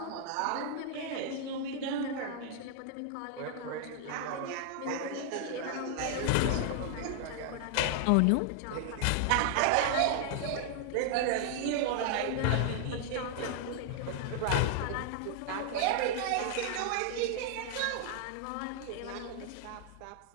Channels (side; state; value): both; different; correlation 0.00